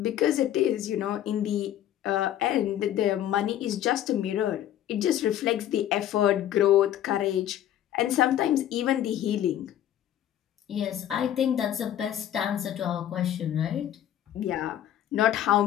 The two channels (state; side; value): quieter; right; 11.5 dB